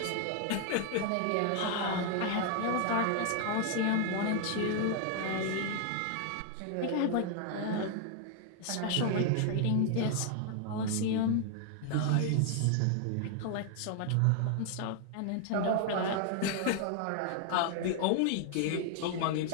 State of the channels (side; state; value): both; different; correlation 0.00